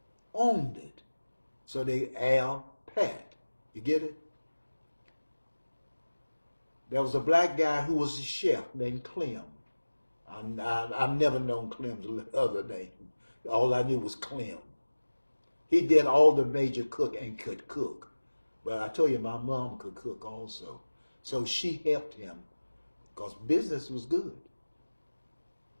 owned it. So they Al Pat. You get it? There was a black guy who was a chef named Clem. I've never known Clem's other name. All I knew was Clem. He did all the major cook and could cook. But I told you, my mom could cook also. So she helped him because business was good.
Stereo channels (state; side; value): inverted; both; correlation -1.00